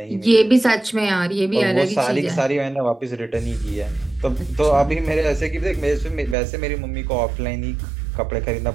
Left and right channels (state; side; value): drops out; left; at 6.4 s